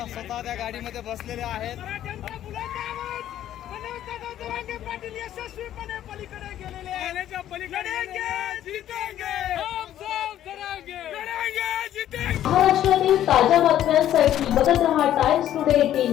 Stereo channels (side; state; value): right; quieter; 11.8 dB